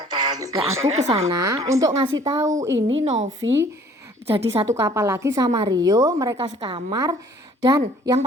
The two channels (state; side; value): normal; both; correlation 0.55